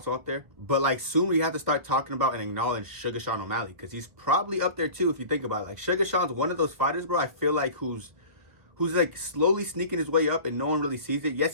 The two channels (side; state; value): left; late; 1.4 ms